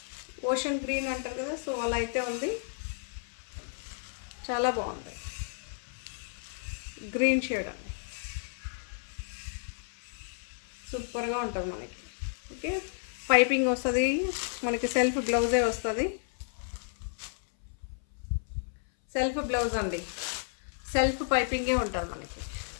ఓషన్ గ్రీన్ అంటారు కదా, సో అలా అయితే ఉంది, చాలా బాగుంది. గ్రీన్ షేడ్ అండి, సూపర్గా ఉంటుంది మనకి. ఓకే, పైపింగ్ వస్తుంది మనకి, సెల్ఫ్ బ్లౌజే వస్తుంది, సెల్ఫ్ బ్లౌజ్ అండి, సెల్ఫ్ పైపింగే ఉంటుంది మనకి.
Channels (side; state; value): right; silent; 56 dB below the other